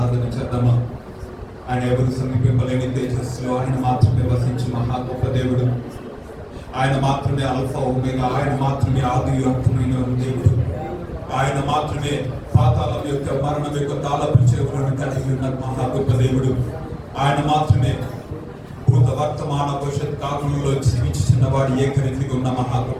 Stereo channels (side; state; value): both; identical; correlation 1.00